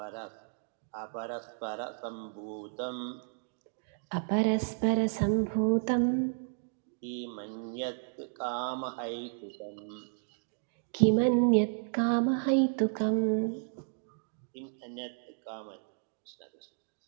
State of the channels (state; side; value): silent; left; digital silence